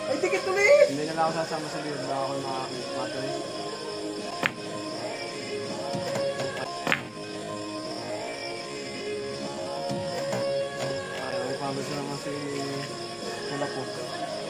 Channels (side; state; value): left; noise; rumble, 28 dB below the sound